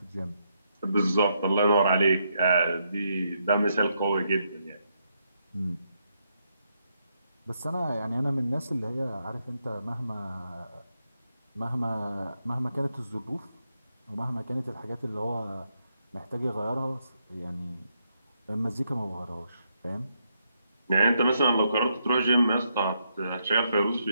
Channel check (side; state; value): both; inverted; correlation -0.79